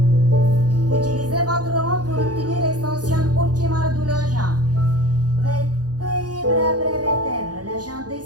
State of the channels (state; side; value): late; left; 0.68 ms